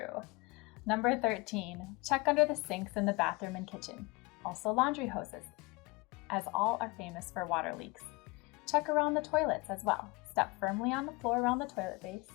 Number 13. Check under the sinks in the bathroom and kitchen. Also laundry hoses, as all are famous for water leaks. Check around the toilets as well. Step firmly on the floor around the toilet base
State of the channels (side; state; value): right; quieter; 24.5 dB